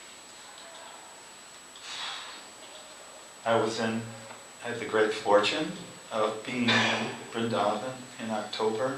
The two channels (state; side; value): identical; both; correlation 1.00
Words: I had the great fortune of being in Vrindavan in October